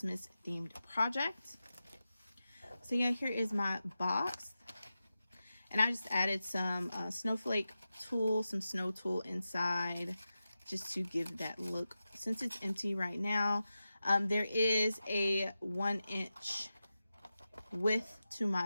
themed project. So yeah, here is my box, and I just added some snowflake tool, some snow tool inside, just to give that look. Since it's empty right now, there is a 1-inch width to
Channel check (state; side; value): inverted; both; correlation -0.92